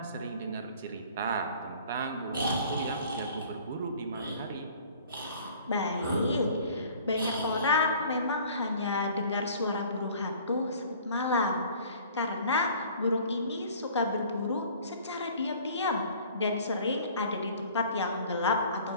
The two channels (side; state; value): both; inverted; correlation -0.50